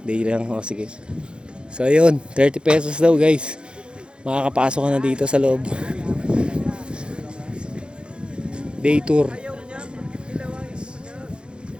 Day lang. O sige. So ayun, 30 pesos daw guys. Makakapasok ka na dito sa loob. Day tour.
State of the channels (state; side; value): late; left; 0.053 ms